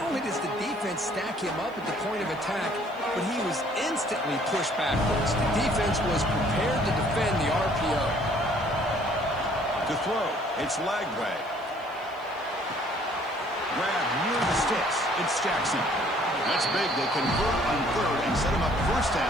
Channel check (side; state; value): right; noise; hiss, 29 dB below the sound